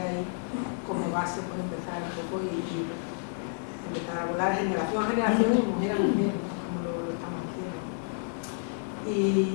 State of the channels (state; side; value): silent; right; digital silence